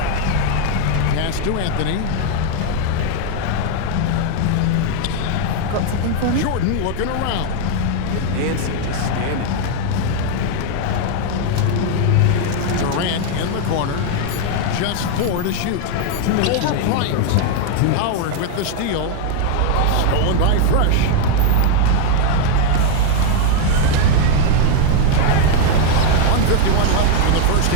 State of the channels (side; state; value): both; different; correlation 0.00